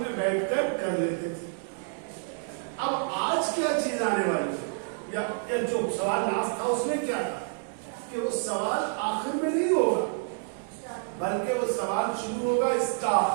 बैठकर कर लेते थे। अब आज क्या चीज आने वाली है, या जो सवाल लास्ट था उसमें क्या था कि वो सवाल आखिर में नहीं होगा, बल्कि वो सवाल शुरू होगा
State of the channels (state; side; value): silent; left; digital silence